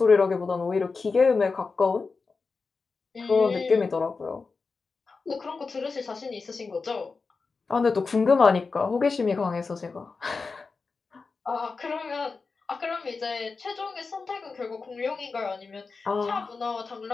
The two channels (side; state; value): right; quieter; 4.4 dB